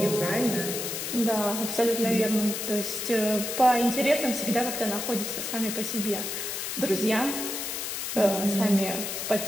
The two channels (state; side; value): noise; left; hiss, 4 dB below the sound